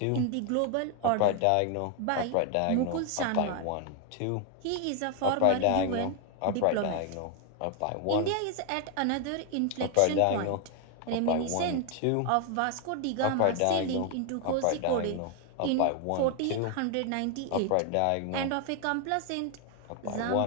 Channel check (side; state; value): both; different; correlation 0.00